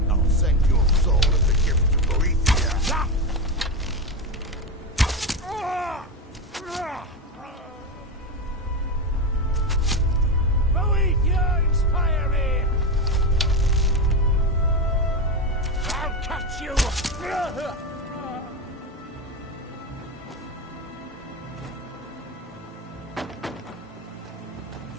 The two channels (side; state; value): both; normal; correlation 0.15